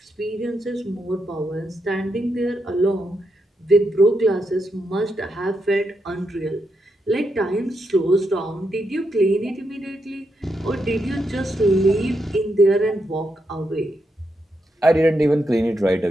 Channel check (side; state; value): both; normal; correlation 0.82